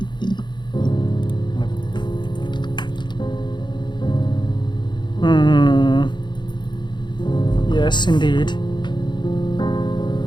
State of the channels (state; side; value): late; right; 0.22 ms